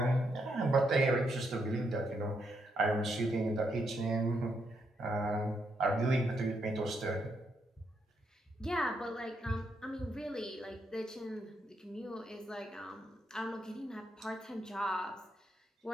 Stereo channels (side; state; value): both; normal; correlation 0.78